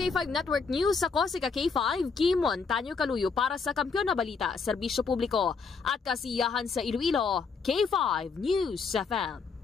Network News, ako si K5 Kimon Tanyo Kaluyo para sa Kampiyon na Balita, Serbisyo Publiko at Kasiyahan sa Iloilo, K5 News FM.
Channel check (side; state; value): right; quieter; 5.1 dB